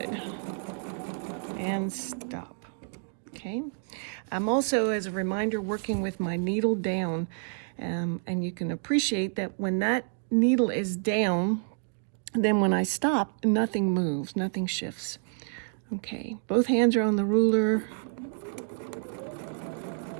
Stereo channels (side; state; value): left; silent; 56 dB below the other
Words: And stop. Okay. I'm also, as a reminder, working with my needle down, and you can appreciate that when that needle is down, then when I stop, nothing moves, nothing shifts. Okay, both hands are on the ruler,